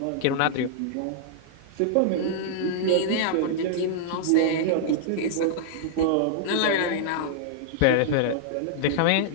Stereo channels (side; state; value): both; different; correlation -0.01